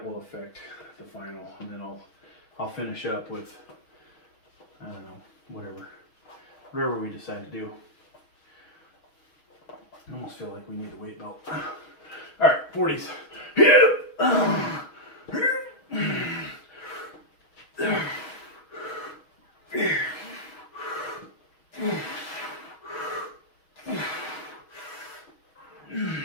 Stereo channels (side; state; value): right; late; 6.3 ms